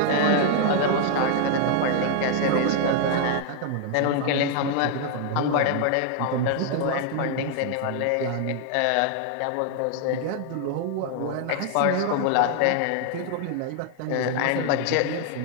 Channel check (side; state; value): both; different; correlation 0.00